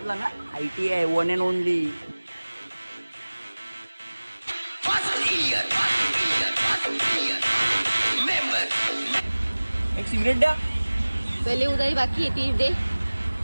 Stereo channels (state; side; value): inverted; both; correlation -1.00